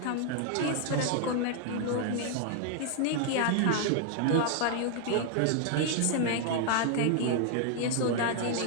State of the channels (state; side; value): different; both; correlation 0.00